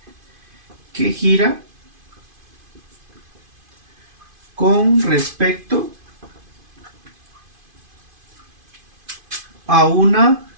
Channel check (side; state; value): left; late; 2.5 ms